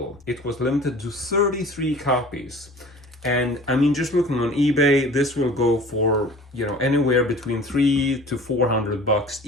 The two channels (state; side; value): normal; both; correlation 0.44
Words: It was limited to 33 copies. And I mean, just looking on eBay, this will go for, anywhere between $300 to $400,